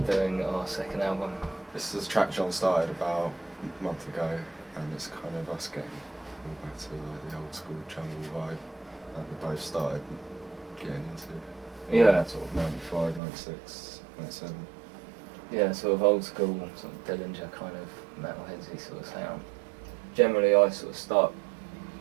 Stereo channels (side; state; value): left; drops out; at 13.2 s